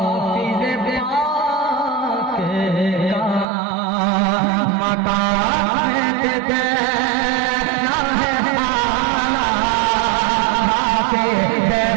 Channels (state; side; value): drops out; left; at 3.5 s